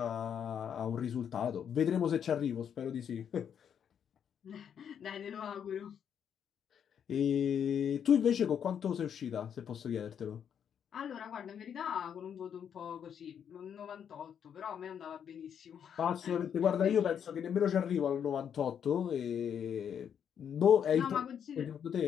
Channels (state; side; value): quieter; right; 8.3 dB